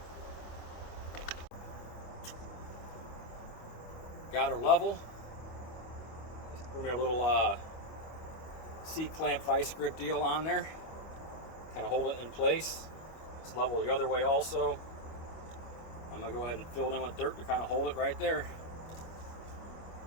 Got her level. Just threw me a little C-clamp vice grip deal on there. Kind of hold it in place. It's level the other way also. I'm gonna go ahead and fill it in with dirt to kind of hold it right there.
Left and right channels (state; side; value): late; right; 25 ms